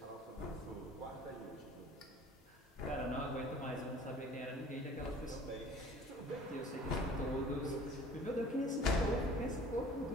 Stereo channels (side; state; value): both; normal; correlation 0.48